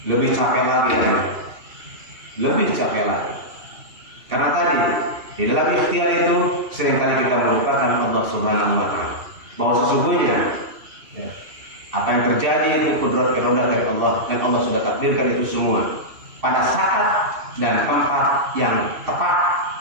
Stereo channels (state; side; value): late; left; 2.7 ms